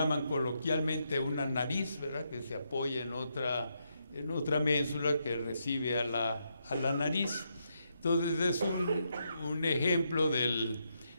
coloquialmente una nariz, ¿verdad?, que se apoya en otra ménsula que recibe a la nariz. Entonces es un ejemplo de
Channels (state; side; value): inverted; both; correlation -0.79